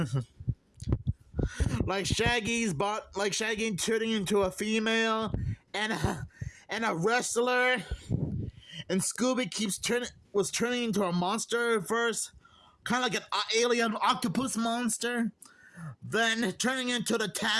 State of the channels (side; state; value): both; identical; correlation 1.00